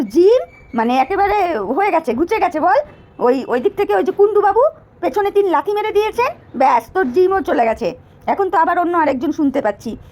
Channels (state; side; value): identical; both; correlation 1.00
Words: জিম মানে একেবারে হয়ে গেছে, ঘুচে গেছে বল। ওই দিক থেকে ওই যে কুণ্ডুবাবু পেছনে 3 লাথি মেরে দিয়েছেন, ব্যাস তোর জিমও চলে গেছে। এখন তো আবার অন্য আরেকজন শুনতে পাচ্ছি,